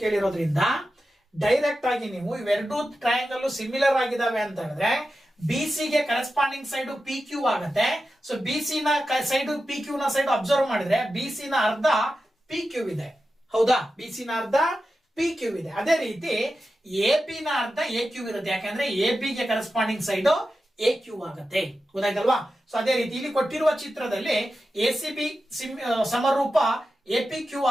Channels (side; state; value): both; normal; correlation 0.91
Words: ಕೇಳಿರೋದ್ರಿಂದ ಡೈರೆಕ್ಟ್ ಆಗಿ ನೀವು ಇವೆರಡು ಟ್ರಯಾಂಗಲ್ ಸಿಮಿಲರ್ ಆಗಿದಾವೆ ಅಂತ ಹೇಳಿದ್ರೆ ಬಿಸಿ ಗೆ ಕರೆಸ್ಪಾಂಡಿಂಗ್ ಸೈಡ್ ಪಿ ಕ್ಯೂ ಆಗುತ್ತೆ. ಸೊ ಬಿಸಿ ನ ಸೈಡ್ ಪಿ ಕ್ಯೂ ನ ಸೈಡ್ ಅಬ್ಸರ್ವ್ ಮಾಡಿದ್ರೆ ಬಿಸಿ ನ ಅರ್ಧ ಪಿ ಕ್ಯೂ ಇದೆ. ಹೌದಾ? ಬಿಸಿ ನ ಅರ್ಧ ಪಿ ಕ್ಯೂ ಇದೆ. ಅದೇ ರೀತಿ ಎ ಪಿ ನ ಅರ್ಧ ಎ ಕ್ಯೂ ಇರುತ್ತೆ, ಯಾಕಂದ್ರೆ ಎ ಪಿ ಗೆ ಕರೆಸ್ಪಾಂಡಿಂಗ್ ಸೈಡ್ ಎ ಕ್ಯೂ ಆಗುತ್ತೆ. ಗೊತ್ತಾಯ್ತಲ್ವಾ? ಸೊ ಅದೇ ರೀತಿ ಇಲ್ಲಿ ಕೊಟ್ಟಿರುವ ಚಿತ್ರದಲ್ಲಿ ಎ ಸಿ ಬಿ ಸಮರೂಪ ಎ ಪಿ ಕ್ಯೂ